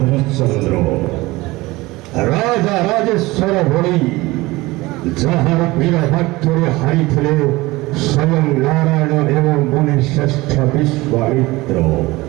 ରାଜା ରାଜେଶ୍ୱର ଭଳି, ଯାହାର ବୀର ବାକ୍ୟରେ ହାରିଥିଲେ ସ୍ୱୟଂ ନାରାୟଣ ଏବଂ ମୁନି ଶ୍ରେଷ୍ଠ ବିଶ୍ୱାମିତ୍ର,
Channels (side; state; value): left; quieter; 20.6 dB